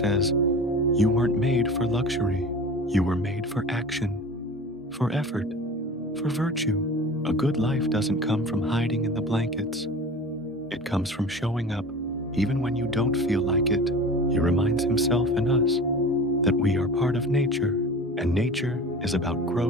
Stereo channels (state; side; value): normal; both; correlation 0.37